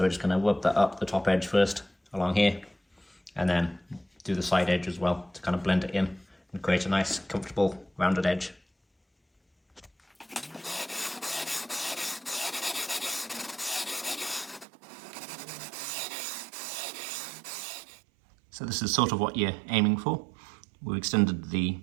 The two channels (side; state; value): left; drops out; at 14.7 s